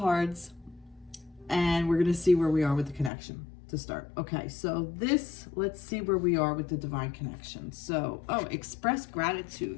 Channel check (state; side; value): drops out; right; at 3.1 s